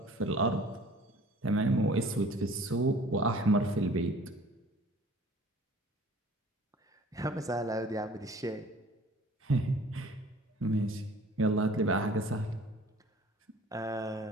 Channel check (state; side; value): normal; both; correlation 0.49